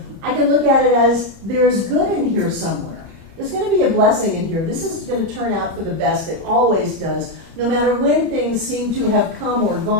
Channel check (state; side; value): late; left; 30 ms